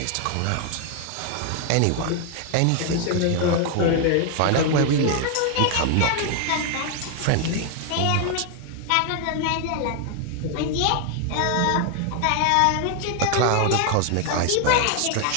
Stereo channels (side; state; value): both; different; correlation 0.00